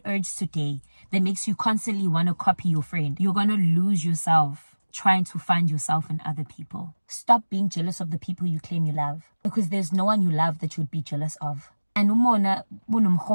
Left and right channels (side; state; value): both; inverted; correlation -1.00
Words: urge today that makes you constantly want to copy your friend. You're going to lose yourself trying to find yourself in other people. Stop being jealous of the people you claim you love, because there's no one you love that you would be jealous of. And